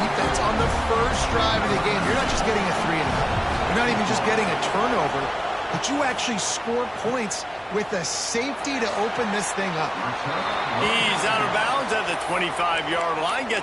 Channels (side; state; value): both; identical; correlation 1.00